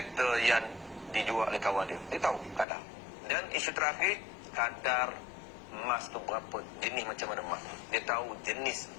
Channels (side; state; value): right; drops out; at 2.7 s